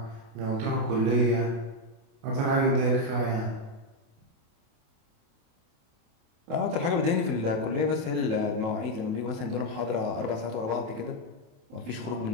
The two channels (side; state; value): left; late; 28 ms